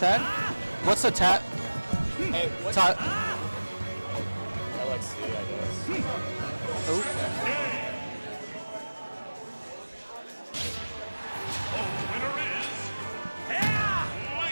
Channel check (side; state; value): both; inverted; correlation -1.00